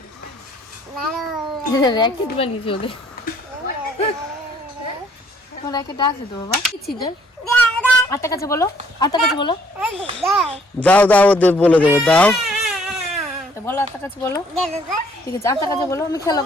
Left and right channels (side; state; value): both; normal; correlation 0.62